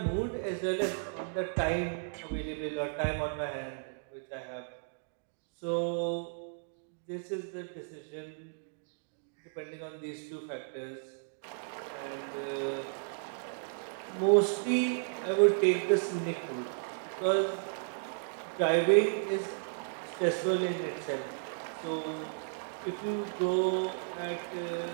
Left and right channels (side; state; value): left; silent; digital silence